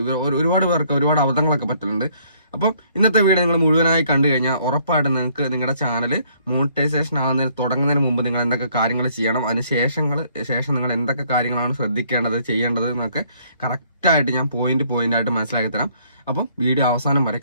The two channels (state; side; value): inverted; both; correlation -0.64